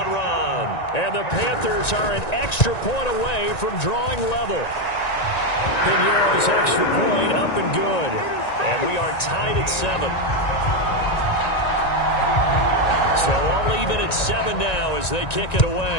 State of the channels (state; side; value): late; right; 1.9 ms